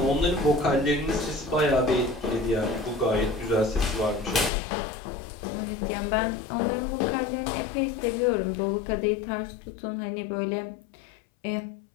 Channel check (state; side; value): drops out; right; at 4.5 s